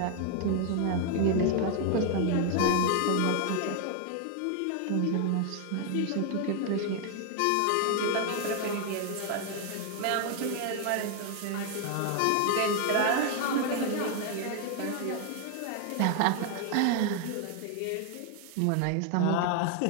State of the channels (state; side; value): different; both; correlation 0.00